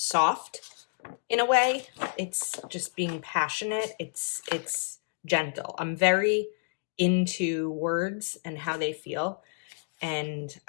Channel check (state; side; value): silent; right; digital silence